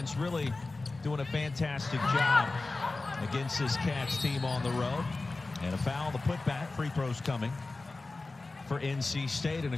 really doing a fantastic job against this Cats team on the road. And a foul, the putback, free throws coming for NC State, and a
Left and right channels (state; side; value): quieter; right; 3.4 dB